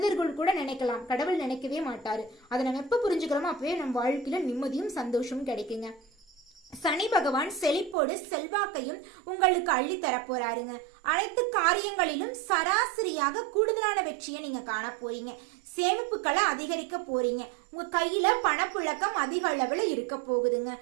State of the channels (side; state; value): left; drops out; at 8.0 s